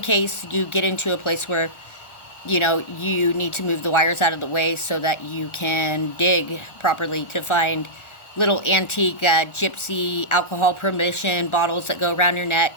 case you get into a place where, you know, you need to move the wires out of the way so that you can dig properly to find little antique gypsy alcohol prohibition bottles that go around your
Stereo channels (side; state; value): right; late; 1.4 ms